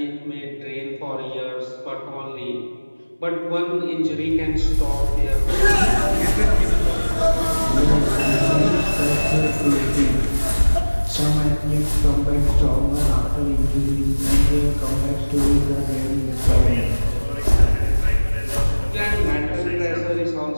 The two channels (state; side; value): inverted; both; correlation -1.00